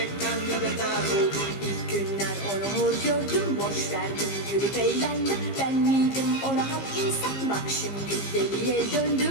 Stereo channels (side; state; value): right; late; 15 ms